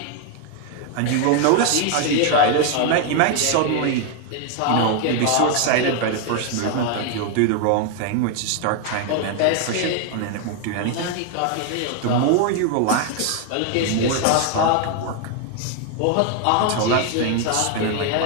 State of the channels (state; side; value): different; both; correlation 0.01